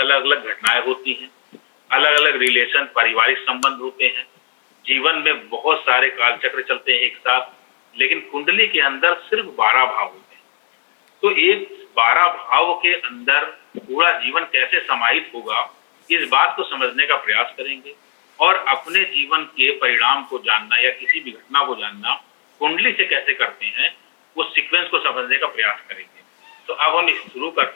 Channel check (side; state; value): right; silent; 60 dB below the other